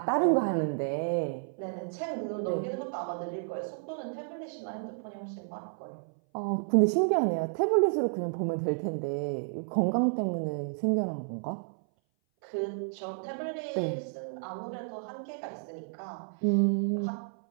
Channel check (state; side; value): silent; left; 57 dB below the other